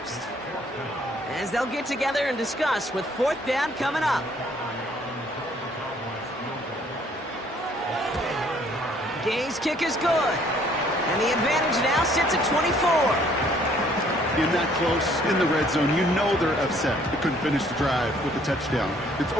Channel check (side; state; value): both; normal; correlation 0.61